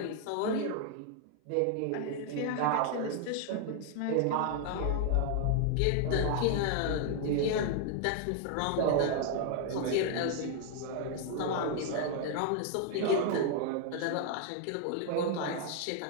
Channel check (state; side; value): different; both; correlation 0.00